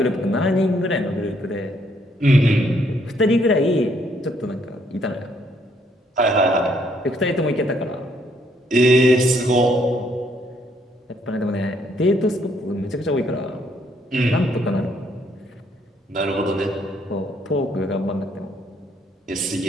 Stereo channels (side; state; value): both; normal; correlation 0.69